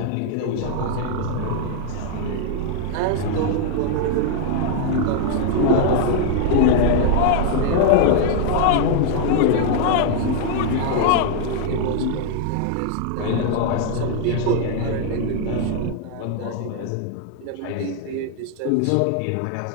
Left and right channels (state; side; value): different; both; correlation 0.00